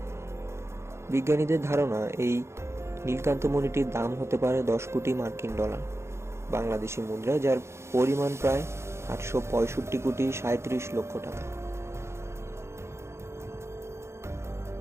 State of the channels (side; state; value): left; late; 0.13 ms